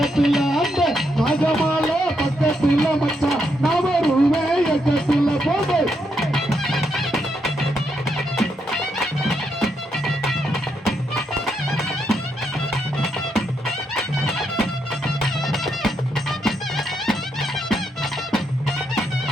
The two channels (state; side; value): normal; both; correlation 0.79